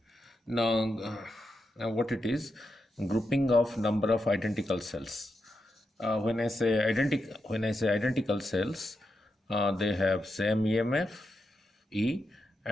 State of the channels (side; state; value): both; normal; correlation 0.86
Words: Now, what it is? Grouping of number of identical cells. When I say identical cells, they have same EMF E